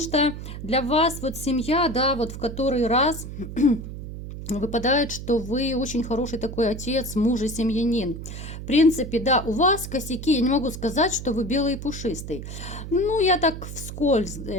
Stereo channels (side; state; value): right; noise; hum, 9 dB below the sound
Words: для вас вот семья, да, вот в который раз выпадает, что вы очень хороший такой отец, муж и семьянин. В принципе, да, у вас косяки, я не могу сказать, что вы белый и пушистый. Ну, я так вскользь